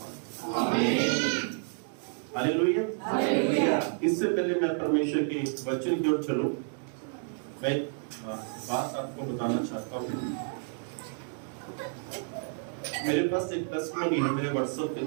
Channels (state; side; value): silent; left; 56 dB below the other